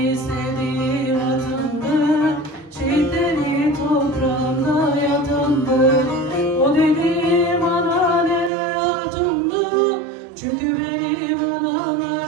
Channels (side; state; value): left; drops out; at 8.5 s